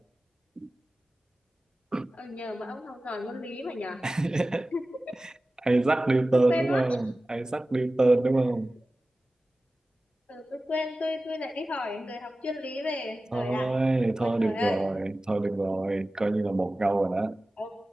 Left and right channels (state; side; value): normal; both; correlation 0.96